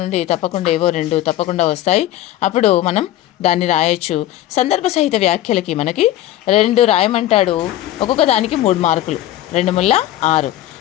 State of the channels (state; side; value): quieter; right; 13.7 dB